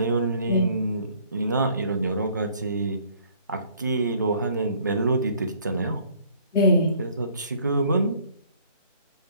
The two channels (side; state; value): both; inverted; correlation -0.59